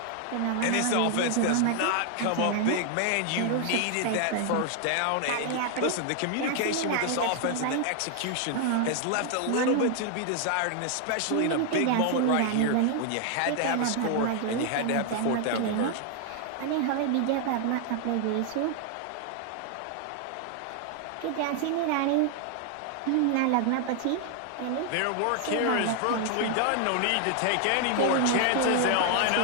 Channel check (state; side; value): different; both; correlation 0.00